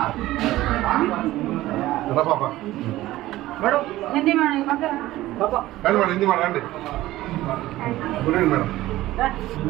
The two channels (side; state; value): left; quieter; 16.2 dB